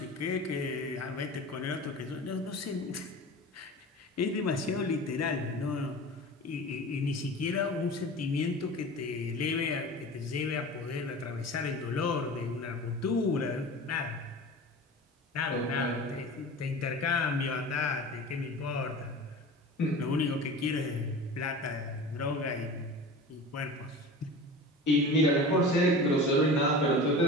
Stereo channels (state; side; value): normal; both; correlation 0.35